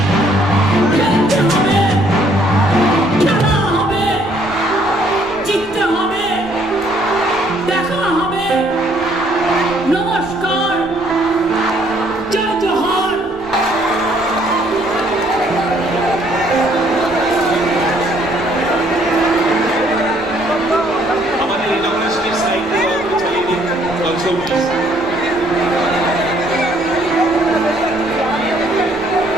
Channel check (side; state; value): left; noise; rumble, 20 dB below the sound